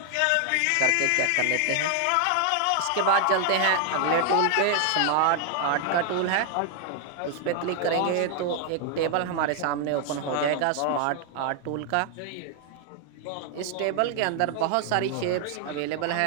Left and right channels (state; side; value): different; both; correlation 0.00